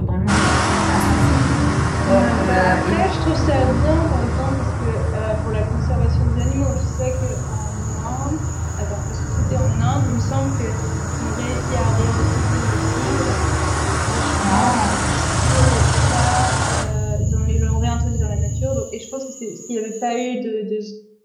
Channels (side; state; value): both; identical; correlation 1.00